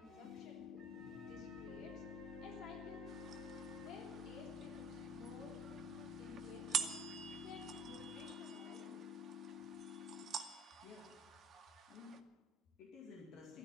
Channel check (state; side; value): normal; both; correlation 0.51